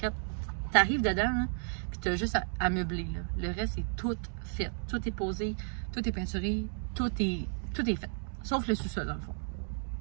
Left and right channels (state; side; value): silent; left; 56 dB below the other